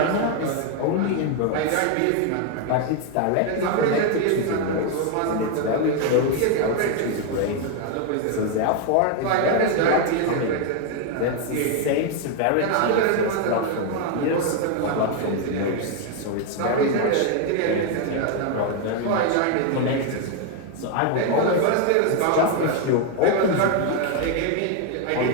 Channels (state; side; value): different; both; correlation 0.01